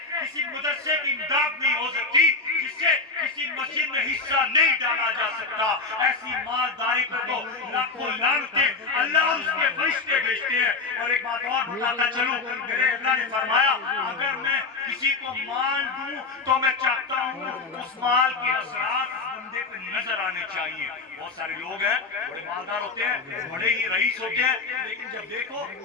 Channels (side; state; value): right; quieter; 4.2 dB